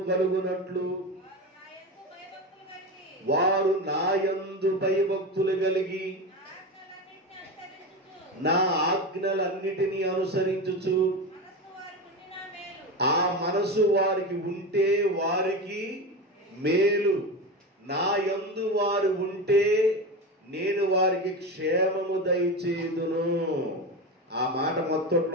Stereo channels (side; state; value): both; normal; correlation 0.22